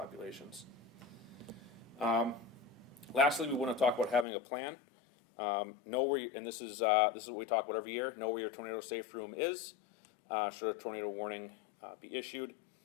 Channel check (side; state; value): right; drops out; at 4.2 s